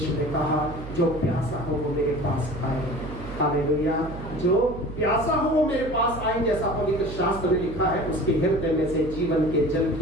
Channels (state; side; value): noise; right; hum, 11 dB below the sound